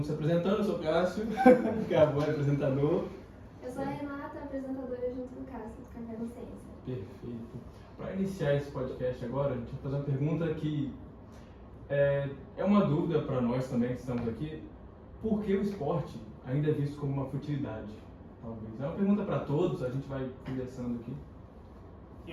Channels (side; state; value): both; identical; correlation 1.00